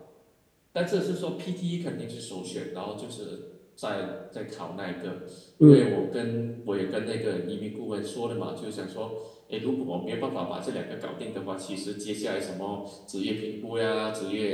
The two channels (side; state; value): both; identical; correlation 1.00